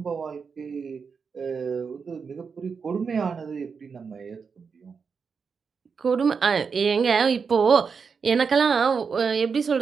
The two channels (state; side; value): quieter; left; 5.7 dB